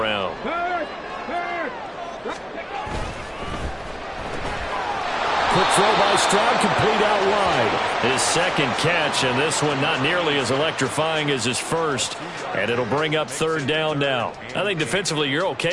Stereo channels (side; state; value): both; identical; correlation 1.00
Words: Quick throw by Stroud, complete out wide. His second catch, and this one not nearly as electrifying as his first. And it'll bring up 3rd down now. I think defensively you're